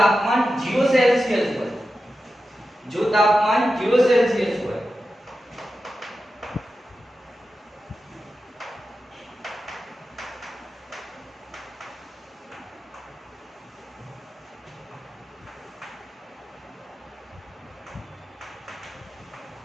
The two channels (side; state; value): both; normal; correlation 0.92